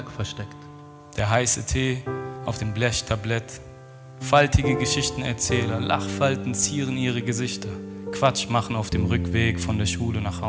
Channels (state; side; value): identical; both; correlation 1.00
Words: versteckt. Der heiße Tee auf dem Blechtablett. Faltige Geschichtenerzähler, Lachfalten zieren ihre Gesichter. Quatsch machen auf dem Rückweg von der Schule nach